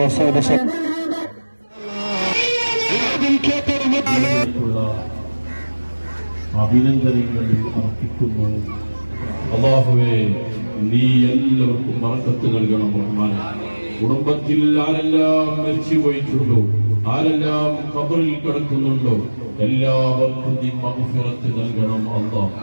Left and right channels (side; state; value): both; inverted; correlation -1.00